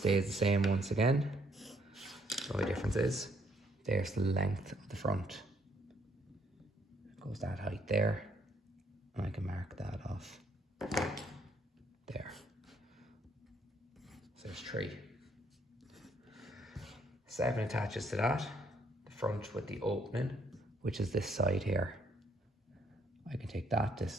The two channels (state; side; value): normal; both; correlation 0.68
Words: the same once again. The only difference is there's the length of the front. Goes that height there, and I can mark that off there. So there's 3. 7 attaches to that, the front with the opening, which is this side here. I can take that